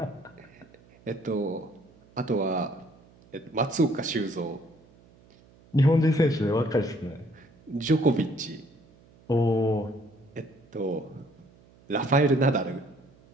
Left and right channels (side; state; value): right; noise; hum, 27 dB below the sound